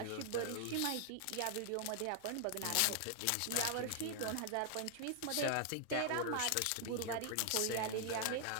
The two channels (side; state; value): both; different; correlation 0.00